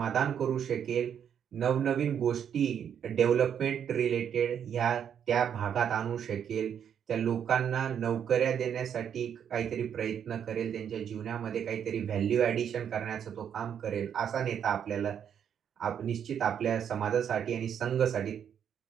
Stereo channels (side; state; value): left; quieter; 8.5 dB